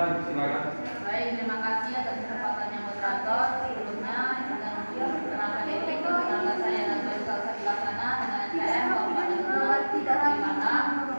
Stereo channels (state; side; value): inverted; both; correlation -1.00